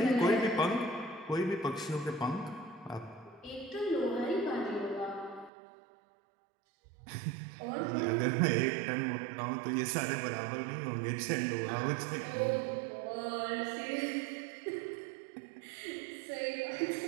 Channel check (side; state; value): left; drops out; at 5.5 s